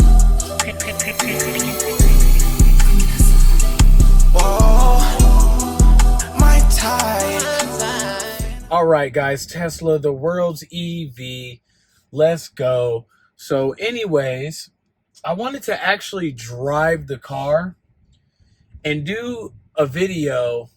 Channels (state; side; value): identical; both; correlation 1.00